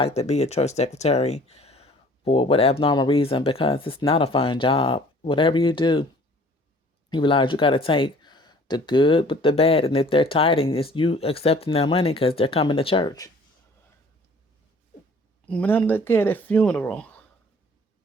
to be a church secretary for what abnormal reason because it's not a fun job. Whatever you do, you realize you got to take the good with the bad. And if they're tithing, it's you accepting their money because they're coming to church. When I look at a funeral,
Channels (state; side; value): normal; both; correlation 0.52